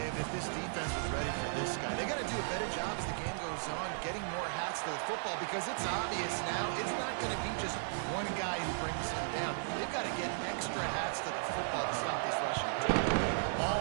if this defense was ready for this guy. They got to do a better job as the game goes on, getting more hats to the football, because it's obvious now it's not going to be just one guy who brings him down. They've got to get extra hats to the football to stop this rushing attack.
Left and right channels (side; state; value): left; silent; digital silence